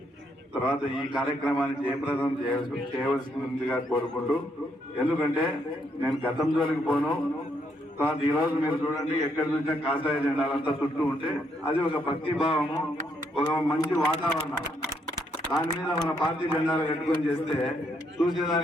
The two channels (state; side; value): normal; both; correlation 0.74